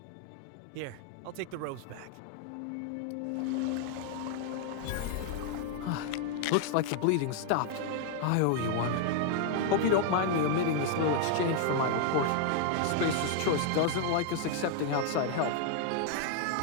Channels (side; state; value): both; different; correlation 0.00